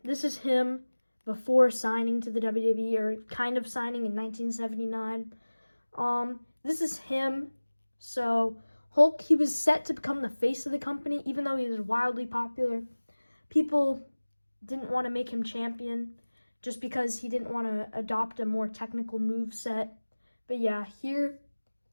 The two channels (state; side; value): inverted; both; correlation -1.00